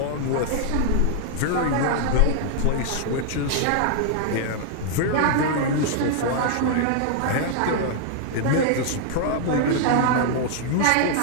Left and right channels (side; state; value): both; different; correlation -0.01